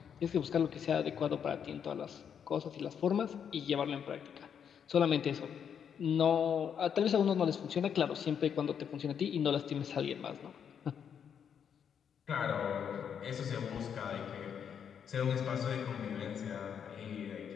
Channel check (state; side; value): quieter; right; 7.9 dB